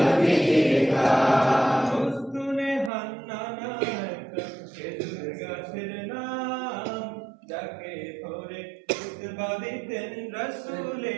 জিরকা উস্তুনে হান্নানা খেজুর গাছের নাম যাকে ধরে খুতবা দিতেন রাসূল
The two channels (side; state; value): left; drops out; at 2.9 s